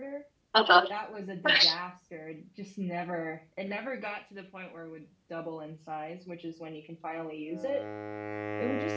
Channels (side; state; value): both; identical; correlation 1.00